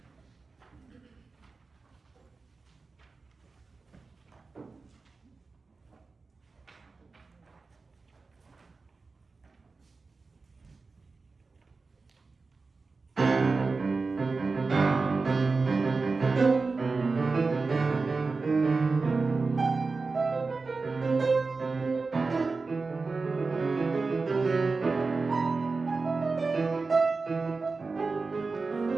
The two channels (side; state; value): left; quieter; 4.1 dB